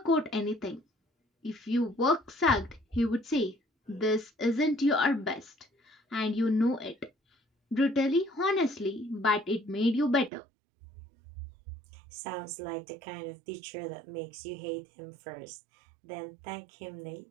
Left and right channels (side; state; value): left; drops out; at 10.3 s